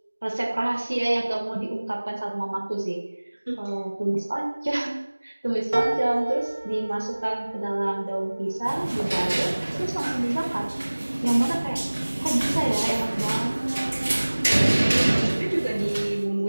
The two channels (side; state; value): both; inverted; correlation -1.00